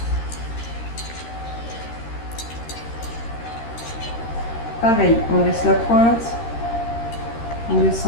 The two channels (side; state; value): right; late; 13 ms